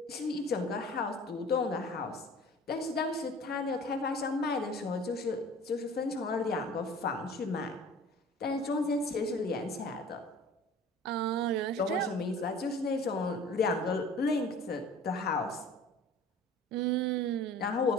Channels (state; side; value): normal; both; correlation 0.44